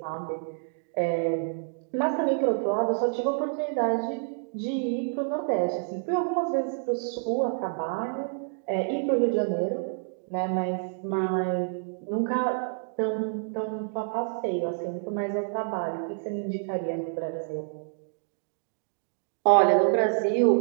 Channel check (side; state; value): left; silent; digital silence